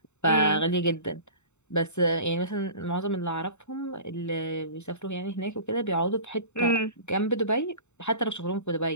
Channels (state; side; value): late; right; 0.82 ms